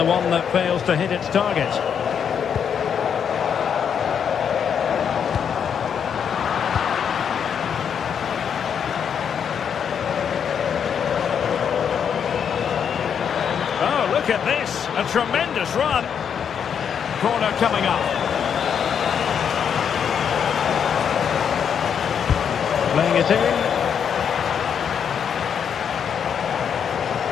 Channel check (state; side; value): quieter; right; 7.7 dB